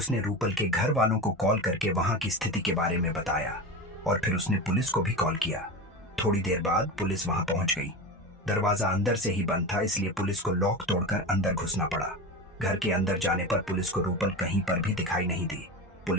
रूपल के घर वालों को कॉल करके वहां की स्थिति के बारे में बताया और फिर उसने पुलिस को भी कॉल किया। थोड़ी देर बाद पुलिस वहां पहुंच गई। दरवाजा अंदर से ही बंद था, इसलिए पुलिस को लॉक तोड़कर अंदर घुसना पड़ा। घर के अंदर जाने पर पुलिस को रूपल कहीं पर भी दिखाई नहीं दी।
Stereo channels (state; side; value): normal; both; correlation 0.25